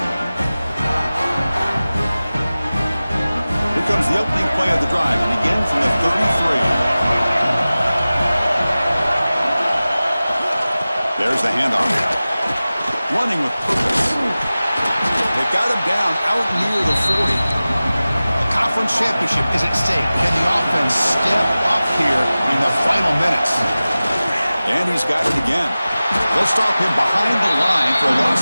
Here comes the opening play of the drive, and again from the 33. There's the handoff. Running with purpose. They've got him down out near the 40. A conference championship is at stake. Can the offense step up here in the final minutes? And he's got it again. They'll stop him behind the line for a loss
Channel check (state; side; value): inverted; both; correlation -0.97